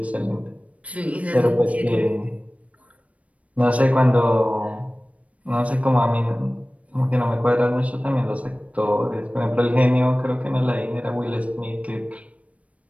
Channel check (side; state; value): left; late; 0.066 ms